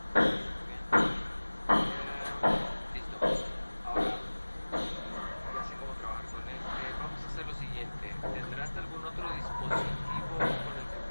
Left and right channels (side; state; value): both; inverted; correlation -1.00